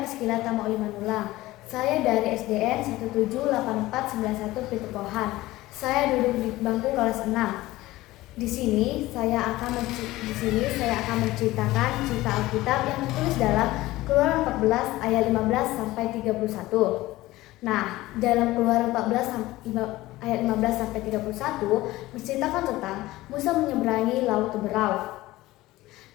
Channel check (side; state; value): right; quieter; 17.8 dB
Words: Priscila Tamaulimanula. Saya dari SDN 178491 Pitukohan. Saya duduk di bangku kelas 6. Di sini saya akan menceritakan cerita Alkitab yang tertulis dalam Keluaran 14 ayat 15 sampai 31. Nah, dalam Keluaran 14 ayat 15 sampai 31 menceritakan tentang Musa menyeberangi Laut Teberau.